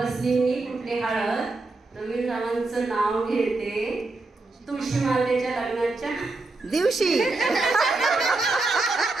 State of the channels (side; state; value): left; quieter; 3.3 dB